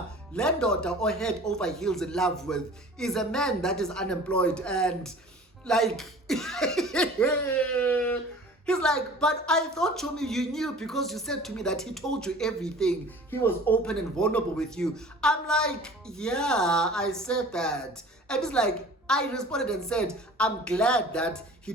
landlord or head over heels in love with is a man that is unemployed and like, he's like, but I thought, Chomi, you knew because you said to me that he told you everything. He was open and vulnerable with you. I'm like, yeah, I said that. And he's like, I responded and said, I'm glad that he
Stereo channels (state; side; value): normal; both; correlation 0.44